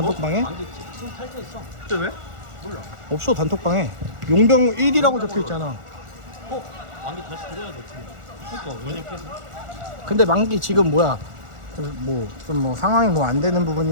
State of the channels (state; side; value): late; left; 1.4 ms